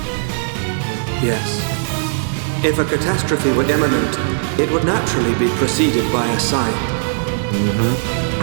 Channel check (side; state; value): left; silent; digital silence